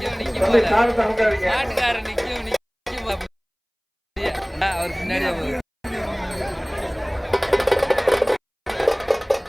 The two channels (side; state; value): both; identical; correlation 1.00